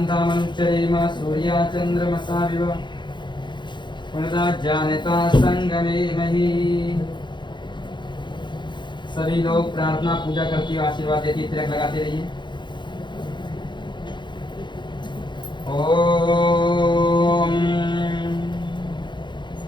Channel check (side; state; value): right; late; 0.22 ms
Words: सूर्या चंद्रमसा विव जानता संगमे मही। सभी लोग प्रार्थना पूजा करती हुए आशीर्वाद देती, तिलक लगाते रहिए। ओम